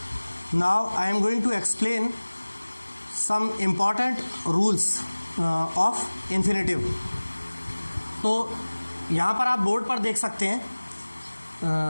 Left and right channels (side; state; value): both; inverted; correlation -1.00